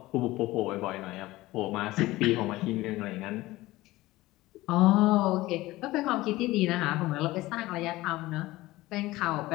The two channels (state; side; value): quieter; right; 18.3 dB